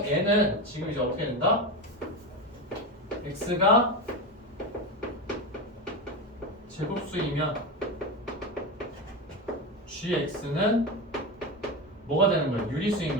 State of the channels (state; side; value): normal; both; correlation 0.19